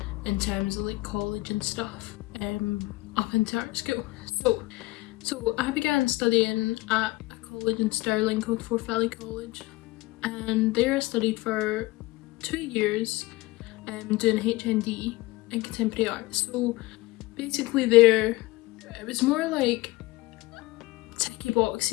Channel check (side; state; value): right; quieter; 20.2 dB